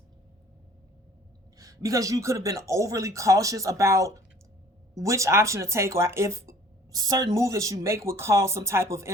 because you could have been overly cautious about which option to take, or if certain move that you make would cause some type of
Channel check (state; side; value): normal; both; correlation 0.52